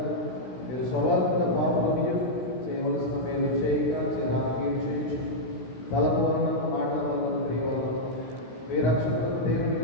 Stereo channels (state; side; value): late; right; 16 ms